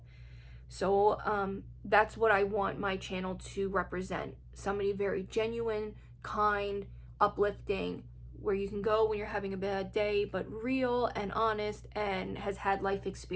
So that's what I want my channel to represent. Somebody very genuine, kind, uplifting, where you can go when you're having a bad day, but real and honest and has had life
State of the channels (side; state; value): both; identical; correlation 1.00